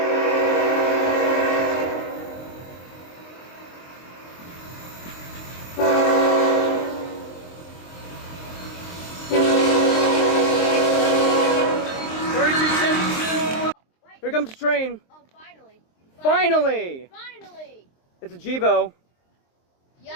Here comes the train. Oh, finally. Finally! Finally! It's a GEVO.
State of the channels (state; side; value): late; right; 23 ms